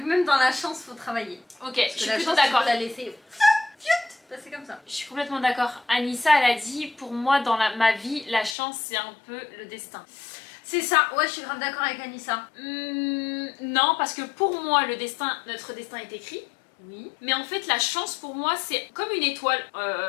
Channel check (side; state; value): right; drops out; at 8.6 s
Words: dans la chance, faut travailler. Ok, parce je suis plutôt d'accord. Tu peux la laisser. C'est comme ça. Je suis complètement d'accord. Anissa, elle a dit, pour moi, dans ma vie, la chance, c'est un peu le destin. C'est ça, ouais, je suis grave d'accord avec Anissa. Non, parce que pour moi, notre destin est écrit. Oui. Mais en fait, la chance, pour moi, c'est comme une étoile,